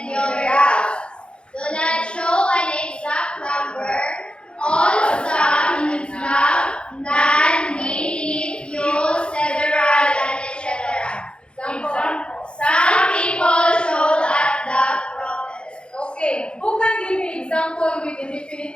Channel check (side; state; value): right; late; 0.055 ms